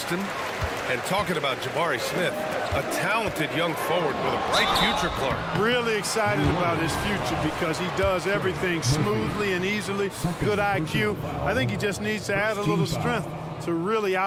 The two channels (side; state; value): both; identical; correlation 1.00